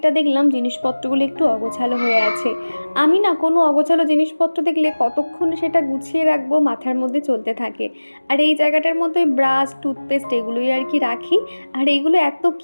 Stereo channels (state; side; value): inverted; both; correlation -1.00